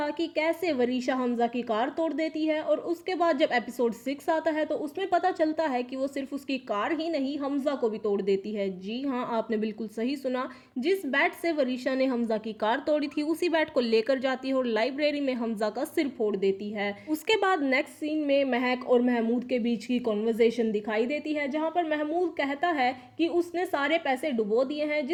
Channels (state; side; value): identical; both; correlation 1.00